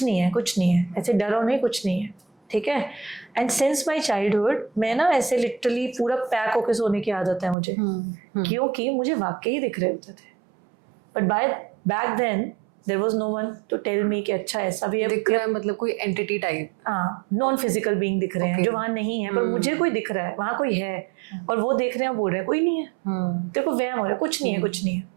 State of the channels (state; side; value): drops out; left; at 7.6 s